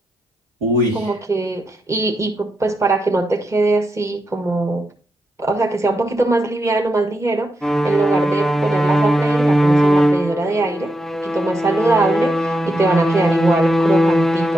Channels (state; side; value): normal; both; correlation 0.85